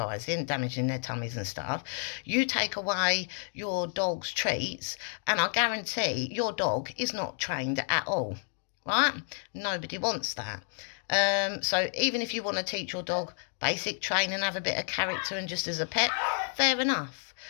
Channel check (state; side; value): silent; right; 57 dB below the other